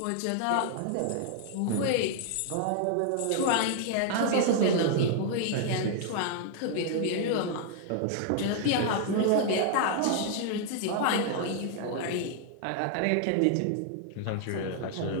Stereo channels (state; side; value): different; both; correlation 0.00